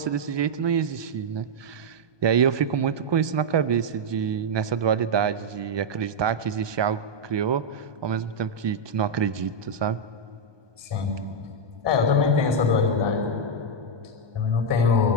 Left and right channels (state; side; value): late; left; 1.2 ms